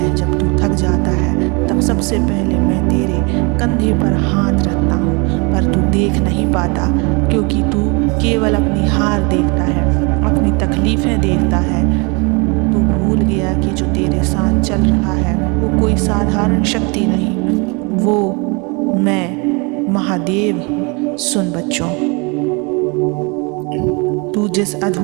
जब तू थक जाता है तब सबसे पहले मैं तेरे कंधे पर हाथ रखता हूँ, पर तू देख नहीं पाता क्योंकि तू केवल अपनी हार देखता है, अपनी तकलीफ़ें देखता है। तू भूल गया कि जो तेरे साथ चल रहा है वो कोई साधारण शक्ति नहीं, वो मैं महादेव हूँ। सुन बच्चों, तू जिस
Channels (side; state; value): left; quieter; 30.2 dB